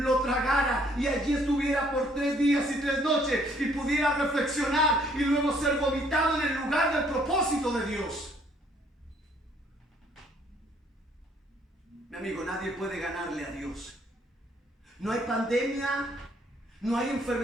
tragara y allí estuviera por 3 días y 3 noches y pudiera reflexionar y luego ser vomitado en el lugar del propósito de Dios. Mi amigo, nadie puede ganarle a Dios. No hay pandemia, no hay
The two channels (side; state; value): both; normal; correlation 0.64